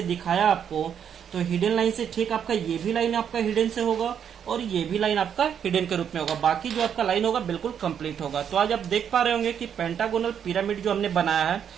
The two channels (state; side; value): quieter; left; 8.3 dB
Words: दिखाया आपको, तो हिडन लाइन से ठीक आपका ये भी लाइन आपका हिडन से होगा और ये भी लाइन आपका हिडन के रूप में होगा। बाकी जो आपका लाइन होगा बिल्कुल कंप्लीट होगा। तो आज आप देख पा रहे होंगे कि पेंटागोनल पिरामिड जो हमने बनाया है,